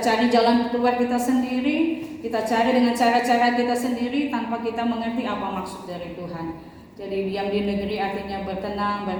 jalan keluar kita sendiri, kita cari dengan cara-cara kita sendiri tanpa kita mengerti apa maksud dari Tuhan. Jadi diam di negeri artinya bertenang,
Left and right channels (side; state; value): both; identical; correlation 1.00